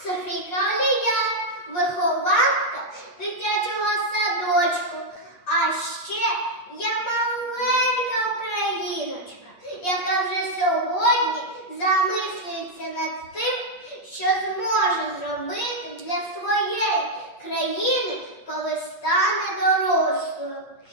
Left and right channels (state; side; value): late; right; 8.4 ms